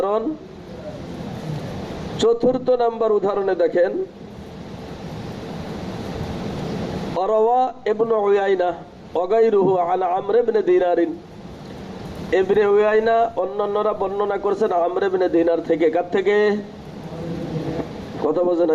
চতুর্থ নাম্বার উদাহরণে দেখেন, অরওয়া ইবনে উয়াইনা ওয়াগাইরুহু আন আমর ইবনে দিনারিন। ইবনে উয়াইনা অন্যান্যরা বর্ণনা করেছেন আমর ইবনে দিনার থেকে। কার থেকে? কথা বোঝে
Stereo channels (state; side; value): identical; both; correlation 1.00